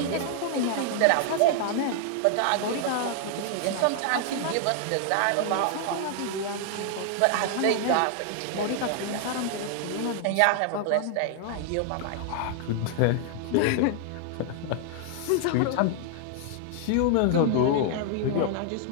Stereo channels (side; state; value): both; different; correlation 0.00